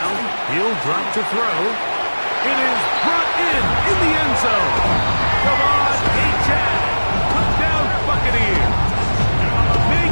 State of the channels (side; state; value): both; inverted; correlation -1.00